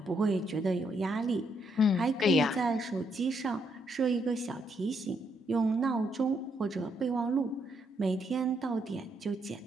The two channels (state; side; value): normal; both; correlation 0.75